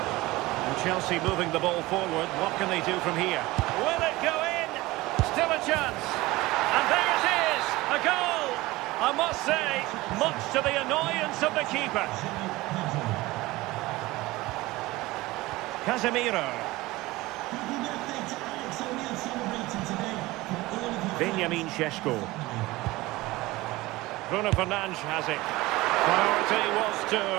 Chelsea moving the ball forward. What can they do from here? Will it go in? Still a chance. And there it is! A goal! I must say, much to the annoyance of the keeper. Casemiro. Benjamin Šeško. Bruno Fernandes has it. Priority was to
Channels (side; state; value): left; quieter; 19.7 dB